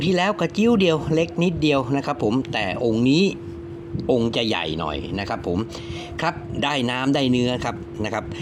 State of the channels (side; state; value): both; identical; correlation 1.00